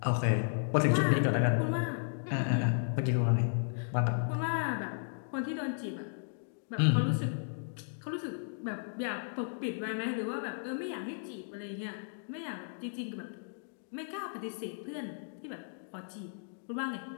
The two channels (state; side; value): silent; right; digital silence